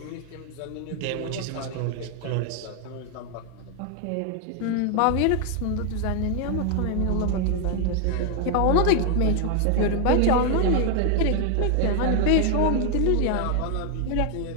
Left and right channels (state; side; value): different; both; correlation 0.00